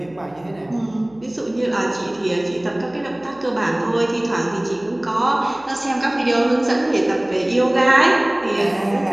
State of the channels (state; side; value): noise; right; hum, 29 dB below the sound